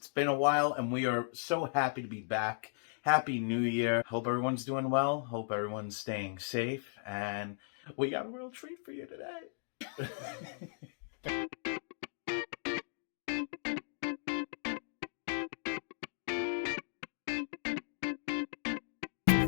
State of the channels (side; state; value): right; silent; digital silence